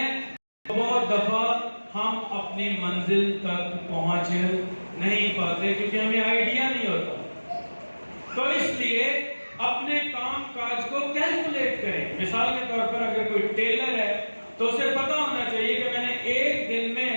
بہت دفعہ ہم اپنی منزل تک پہنچ نہیں پاتے کیونکہ ہمیں آئیڈیا نہیں ہوتا. تو اس لیے اپنے کام کاج کو کیلکولیٹ کریں. مثال کے طور پر اگر کوئی ٹیلر ہے تو اسے پتا ہونا چاہیے کہ میں نے 1 دن میں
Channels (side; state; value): both; inverted; correlation -1.00